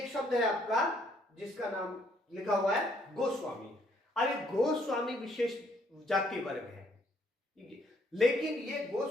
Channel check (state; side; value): normal; both; correlation 0.68